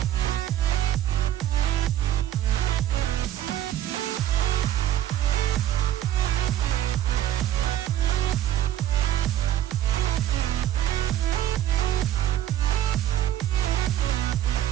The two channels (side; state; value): left; quieter; 12.2 dB